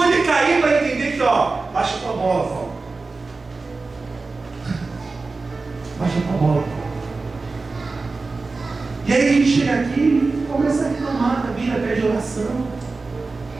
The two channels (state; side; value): quieter; left; 3.8 dB